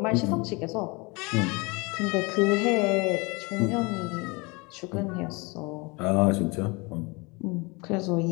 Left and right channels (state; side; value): quieter; right; 27.1 dB